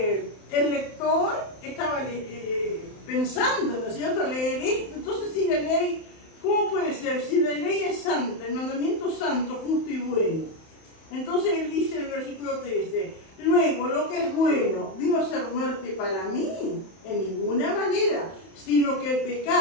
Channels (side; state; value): right; late; 31 ms